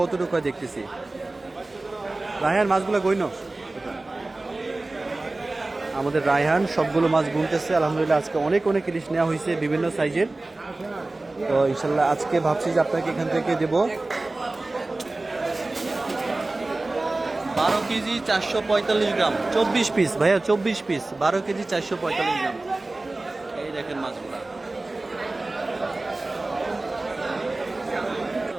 দেখতেছি। রায়হান মাছগুলো গইন, আমাদের রায়হান সবগুলো মাছ গুনতেছে। আলহামদুলিল্লাহ আজকে অনেক অনেক ইলিশ নেওয়া হয়েছে বিভিন্ন সাইজের। তো ইনশাল্লাহ আজকে ভাবছি যে আপনাকে এখান থেকে দেবো 12 কেজি 445 গ্রাম, 24 পিস ভাইয়া, 24 পিস, 12 কেজি 445 গ্রাম। এই দেখেন মাছগুলা,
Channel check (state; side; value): quieter; left; 3.0 dB